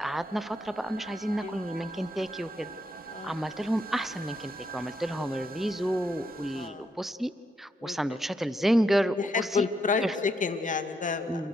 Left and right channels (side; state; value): both; normal; correlation 0.78